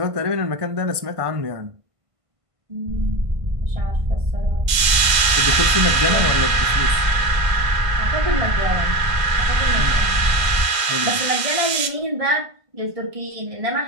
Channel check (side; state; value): left; late; 1.5 ms